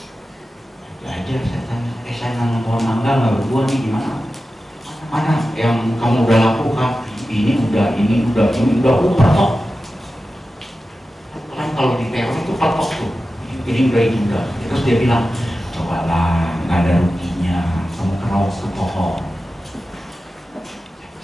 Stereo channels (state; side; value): normal; both; correlation 0.93